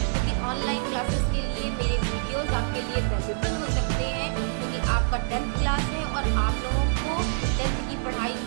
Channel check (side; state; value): left; silent; digital silence